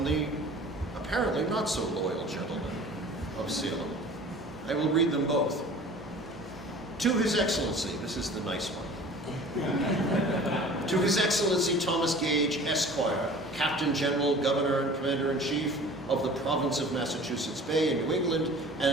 the apparently not so loyal gentleman of Salem. I will read them both. To His Excellency, this is the nice one. To His Excellency Thomas Gage, Esquire, Captain General, Governor, and Commander-in-Chief of the Province of Massachusetts Bay in New England,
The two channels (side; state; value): both; normal; correlation 0.44